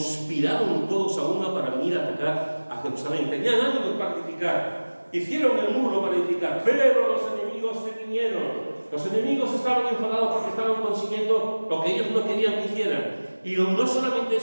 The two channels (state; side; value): inverted; both; correlation -1.00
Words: todos a una para venir a atacar a Jerusalén. Tenían ánimos para edificar, hicieron el muro para edificar, pero los enemigos se vinieron. Los enemigos estaban enfadados porque estaban consiguiendo lo que ellos no querían que hicieran. Y no solamente